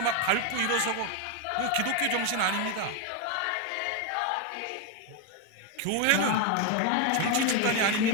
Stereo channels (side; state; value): both; different; correlation 0.01